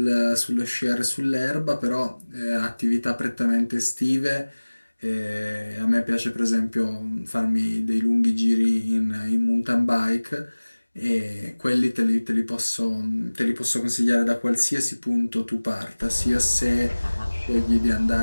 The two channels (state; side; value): inverted; both; correlation -1.00